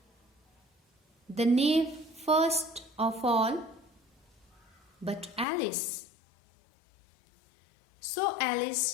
The knave first of all, but Alice. So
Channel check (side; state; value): right; drops out; at 5.5 s